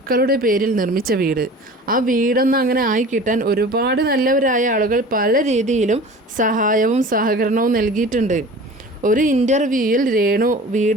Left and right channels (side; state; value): both; normal; correlation 0.41